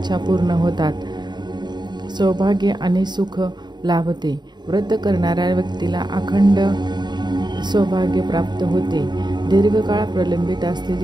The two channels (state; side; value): late; left; 0.21 ms